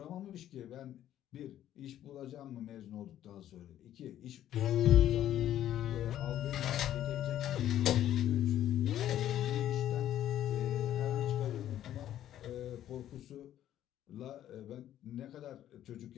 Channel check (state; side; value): quieter; right; 11.8 dB